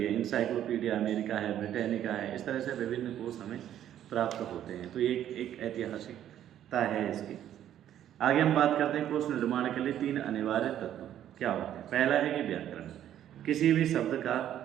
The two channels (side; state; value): left; quieter; 11.1 dB